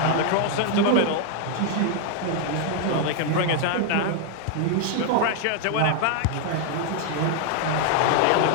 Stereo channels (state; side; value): different; both; correlation 0.00